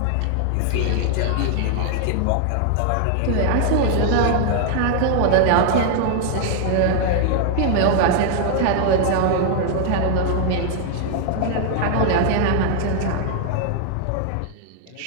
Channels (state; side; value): different; both; correlation 0.00